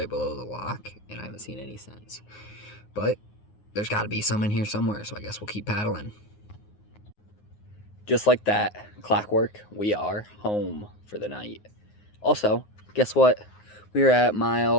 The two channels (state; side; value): late; right; 9.6 ms